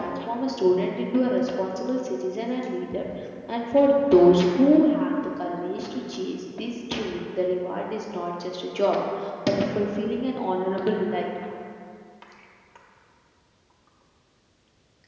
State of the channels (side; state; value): both; identical; correlation 1.00